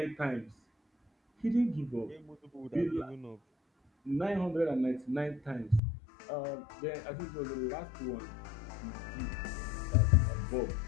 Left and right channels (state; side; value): drops out; right; at 5.8 s